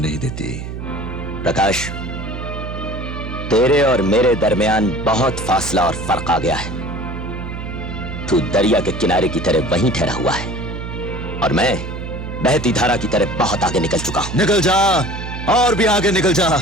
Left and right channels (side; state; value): right; noise; hum, 8 dB below the sound